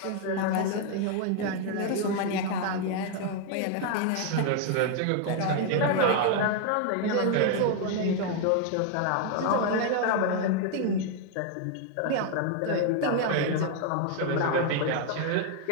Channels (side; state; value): both; different; correlation 0.00